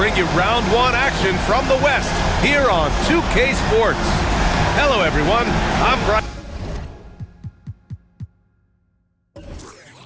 you round 1 action from the West here on 2K Sports. Hello, everyone. I'm Brian.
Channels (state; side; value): identical; both; correlation 1.00